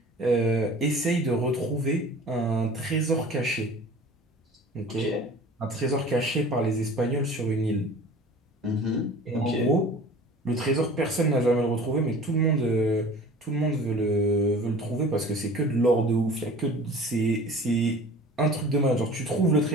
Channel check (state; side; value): normal; both; correlation 0.43